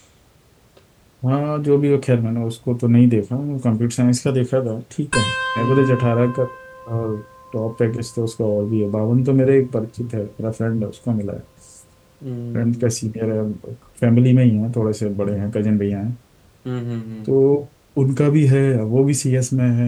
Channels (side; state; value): both; identical; correlation 1.00